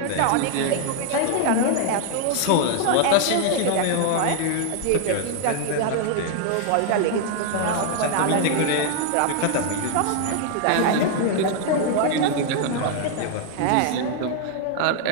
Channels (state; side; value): different; both; correlation 0.00